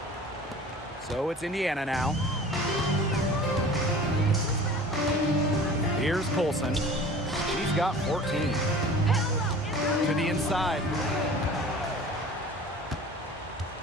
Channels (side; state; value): both; normal; correlation 0.42